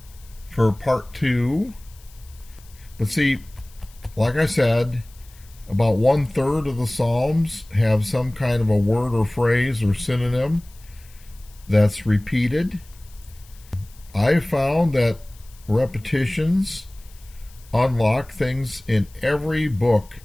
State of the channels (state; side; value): noise; left; hiss, 26 dB below the sound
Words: for part two. But see, like I said, about 1/3 of the Psalms have some kind of a word or phrase or synonym that's repeated. I found that repetitions unlock things in every book